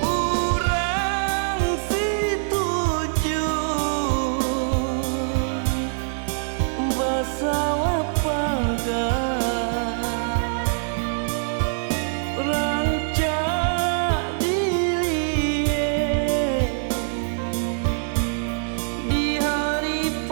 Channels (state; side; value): silent; left; digital silence